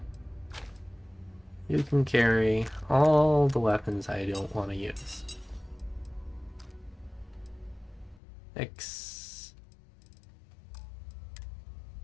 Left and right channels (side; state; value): right; drops out; at 8.2 s